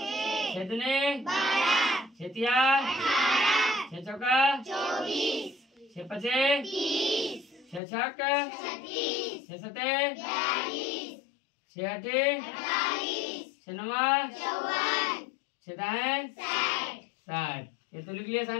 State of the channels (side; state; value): right; drops out; at 7.8 s